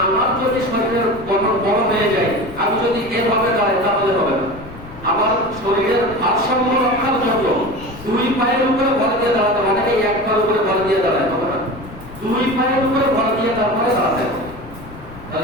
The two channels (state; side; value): noise; left; rumble, 17 dB below the sound